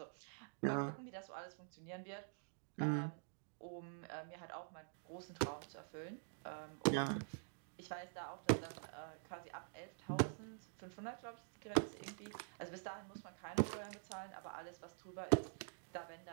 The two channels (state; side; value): silent; left; digital silence